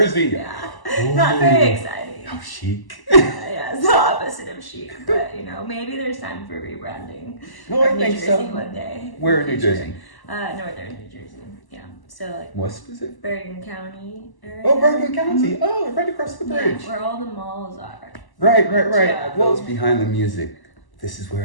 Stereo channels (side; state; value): right; late; 1.0 ms